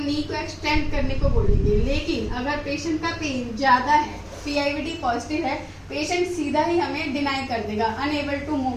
नी को एक्सटेंड करने को बोलेंगे। लेकिन अगर पेशेंट का पेन ज्यादा है, PIVD पॉजिटिव है, पेशेंट सीधा ही हमें डिनाई कर देगा, अनएबल टू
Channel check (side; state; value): both; identical; correlation 1.00